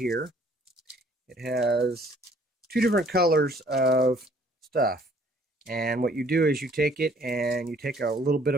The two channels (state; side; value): normal; both; correlation 0.59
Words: it has 2 different colors of stuff. And what you do is you take it and you take a little bit